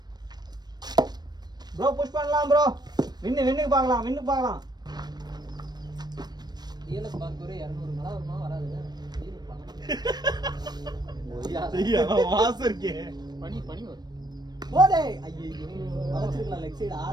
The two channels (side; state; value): left; late; 0.20 ms